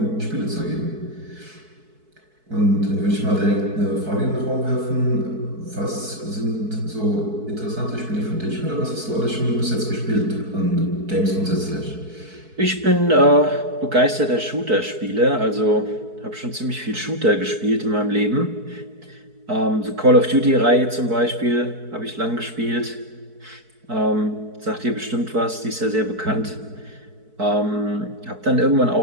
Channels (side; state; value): left; late; 4.6 ms